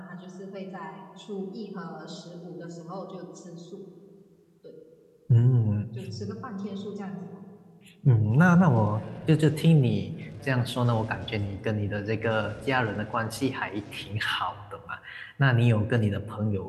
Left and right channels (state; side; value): identical; both; correlation 1.00